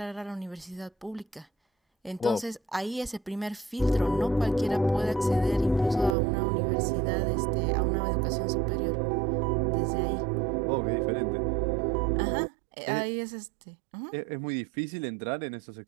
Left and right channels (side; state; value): left; drops out; at 6.2 s